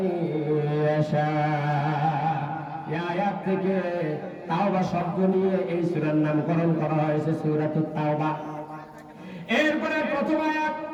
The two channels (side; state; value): both; identical; correlation 1.00